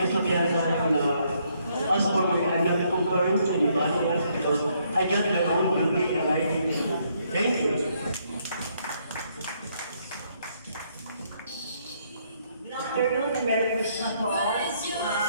tayo na as for me, I'm not comparing to anybody else because I got my own beauty and I think so. Thank you. Good afternoon, Merry Christmas po. I'm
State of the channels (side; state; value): both; inverted; correlation -0.71